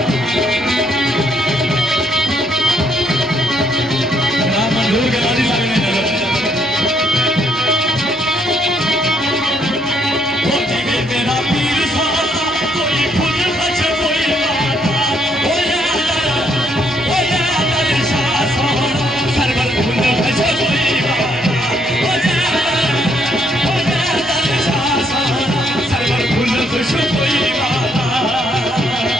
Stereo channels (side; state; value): both; normal; correlation 0.70